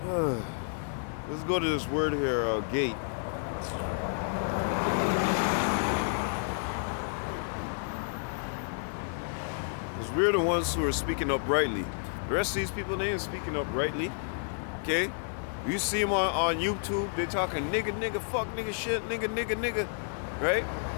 Let's go to this word here, gate. Because we're the ones who are speaking uprightly. The rest of these people, they ain't speaking uprightly. Okay? You see them on YouTube, they're talking nigga, fuck, nigga, shit, nigga, right?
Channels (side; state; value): right; silent; 57 dB below the other